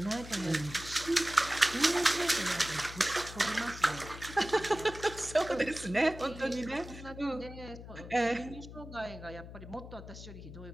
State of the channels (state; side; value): noise; left; hum, 13 dB below the sound